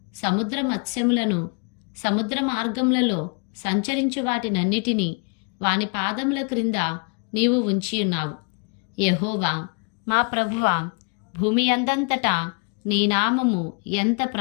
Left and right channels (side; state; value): right; quieter; 37.3 dB